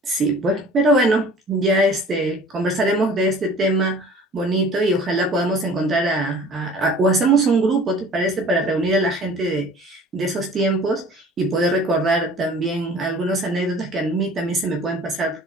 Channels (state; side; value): normal; both; correlation 0.47